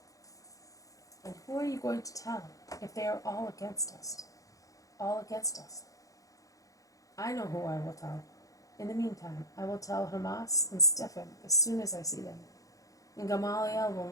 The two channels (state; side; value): late; right; 0.17 ms